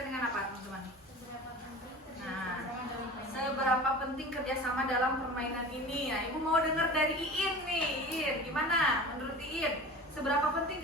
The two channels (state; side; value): normal; both; correlation 0.36